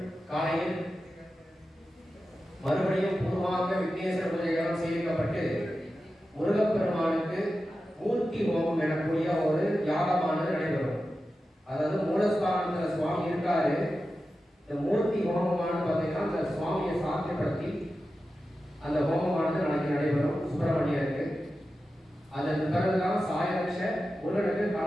காலையில் மறுபடியும் பூர்வாங்க விக்னேஸ்வர பூஜைகளாம் சேமிக்கப்பட்டு முருகப்பெருமானுக்கு மூர்த்தி ஹோமம் எனக்கூடிய ஒரு யாகமானது நடைபெறும். அதாவது மூலஸ்தானத்தில் சுவாமி இருக்காரு. இந்த மூர்த்தி ஹோமமானது பார்த்தீங்கன்னா அந்த சுவாமியை சாத்தியப்படுத்தி அந்த ஹோமமானது நாளைக்கு நடைபெறும் சுப்பிரமணியருக்கு. அதன் பிறகுதான் சாயரட்ச முருகனுக்கு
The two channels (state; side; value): normal; both; correlation 0.92